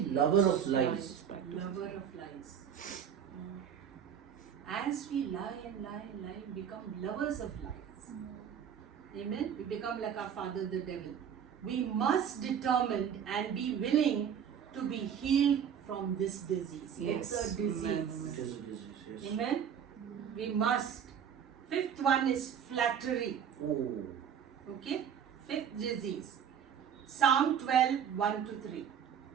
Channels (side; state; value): left; quieter; 8.3 dB